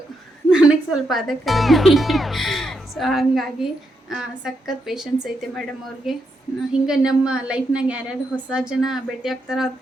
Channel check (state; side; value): normal; both; correlation 0.81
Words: ನನಗೆ ಸ್ವಲ್ಪ ಅದೇ ಕಲಿಬೇಕು. ಸೊ ಹಾಗಾಗಿ ಸಖತ್ ಪೇಷನ್ಸ್ ಐತೆ ಮೇಡಮ್ ಅವ್ರಿಗೆ. ಹಿಂಗೆ ನಮ್ಮ ಲೈಫ್ನಾಗ ಯಾರ್ಯಾರು ಹೊಸ ಜನ ಭೇಟಿ ಆಗ್ತಾರೋ ಅವ್ರ